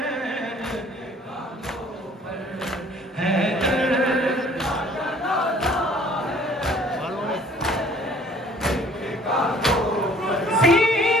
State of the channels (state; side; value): normal; both; correlation 0.55